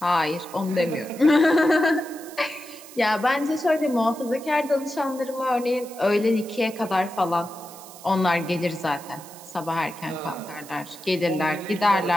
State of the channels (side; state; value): right; noise; hiss, 18 dB below the sound